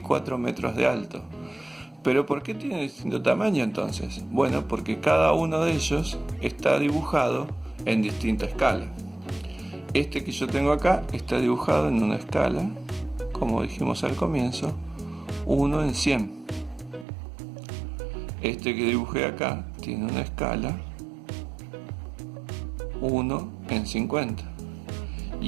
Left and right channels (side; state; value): left; drops out; at 17.1 s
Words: metros de alto. ¿Pero por qué tiene distinto tamaño entonces? Bueno, porque cada uno de ellos está dibujado en distinta escala. Este que yo tengo acá está dibujado en una escala, como dijimos al comienzo, 1 en 100. Este que dibujé acá tiene una escala 1 en 50.